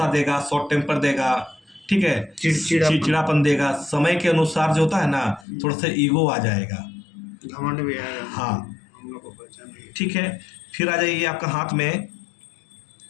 देगा, शॉर्ट टेम्पर देगा, ठीक है, चिड़चिड़ापन देगा। समय के अनुसार जो होता है ना, थोड़ा सा ईगो आ जाएगा, घमंड भी आएगा। हाँ, हम लोग को पहचान नहीं। ठीक है। फिर आ जाइए आपका हाथ में,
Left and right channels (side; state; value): right; drops out; at 5.5 s